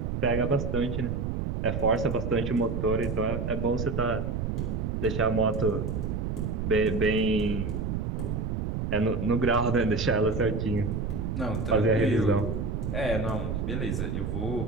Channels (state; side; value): noise; right; rumble, 1 dB below the sound